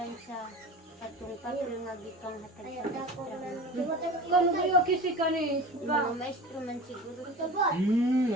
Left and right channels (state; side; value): normal; both; correlation 0.34